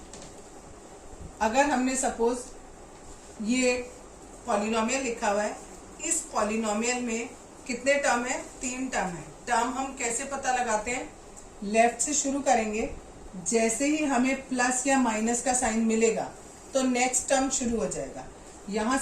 अगर हमने सपोज ये पॉलिनोमियल लिखा हुआ है, इस पॉलिनोमियल में कितने टर्म है, तीन टर्म है। टर्म हम कैसे पता लगाते हैं, लेफ्ट से शुरू करेंगे, जैसे ही हमें प्लस या माइनस का साइन मिलेगा तो नेक्स्ट टर्म शुरू हो जाएगा। यहाँ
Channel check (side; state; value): both; identical; correlation 1.00